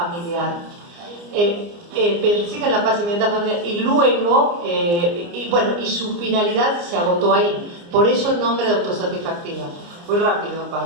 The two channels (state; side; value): late; left; 29 ms